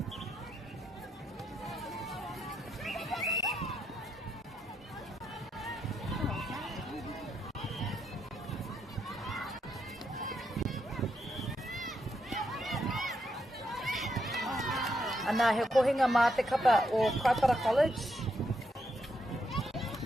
Ana he kohinga mā te kapa o Kaipara College.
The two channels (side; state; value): both; normal; correlation 0.80